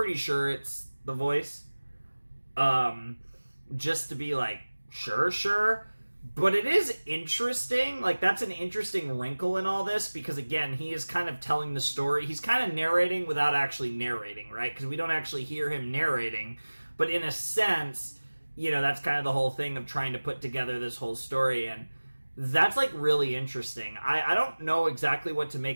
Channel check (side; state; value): both; inverted; correlation -1.00